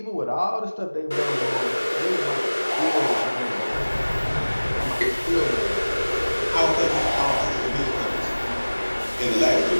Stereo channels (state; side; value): inverted; both; correlation -1.00